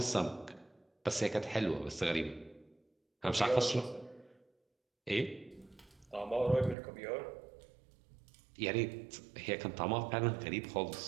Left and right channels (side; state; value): left; drops out; at 6.8 s